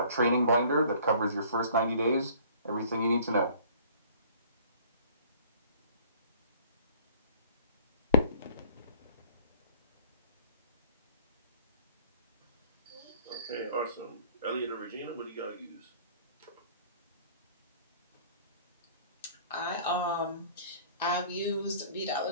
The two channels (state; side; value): inverted; both; correlation -0.51